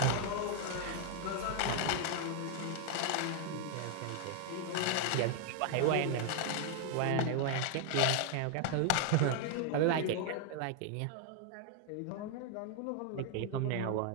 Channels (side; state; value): both; different; correlation 0.00